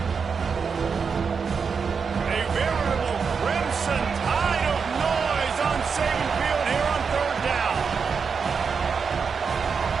A veritable Crimson Tide of noise on Saban Field here on third down.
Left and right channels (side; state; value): left; quieter; 5.7 dB